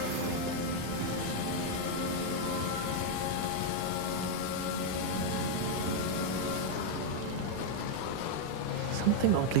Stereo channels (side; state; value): both; different; correlation 0.00